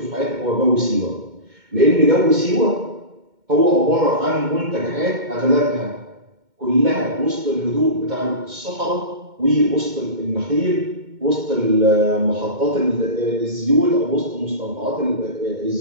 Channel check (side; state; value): left; late; 2.1 ms